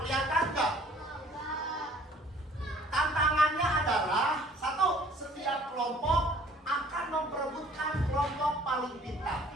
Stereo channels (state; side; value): normal; both; correlation 0.55